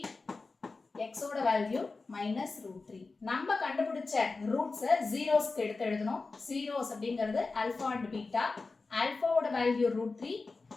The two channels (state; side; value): quieter; right; 3.9 dB